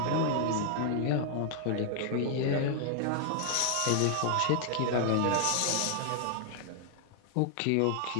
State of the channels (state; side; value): different; both; correlation 0.00